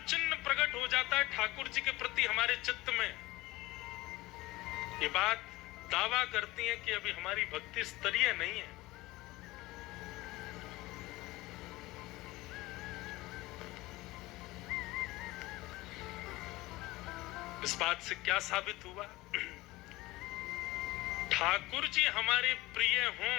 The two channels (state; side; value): quieter; right; 19.6 dB